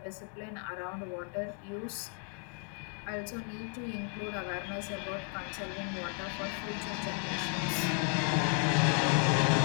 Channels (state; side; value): quieter; right; 39.4 dB